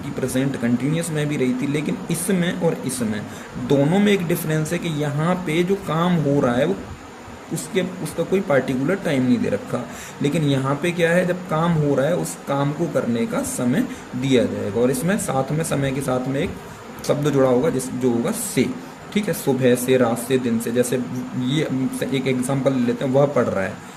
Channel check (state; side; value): identical; both; correlation 1.00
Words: प्रेजेंट कंटिन्यूअस में भी रही थी, लेकिन इसमें और इसमें दोनों में एक डिफरेंस है कि यहाँ पे जो काम हो रहा है वो उसका कोई पार्टिकुलर टाइम नहीं दे रखा, लेकिन यहाँ पे क्या है, जब काम हो रहा है उस काम को करने का समय दिया जाएगा, और इसमें साथ में समय के साथ में एक शब्द जुड़ा होगा जो होगा से। ठीक है, सुबह से, रात से, दिन से। जैसे ये एक एग्जांपल ले लेते हैं, वह पढ़ रहा है,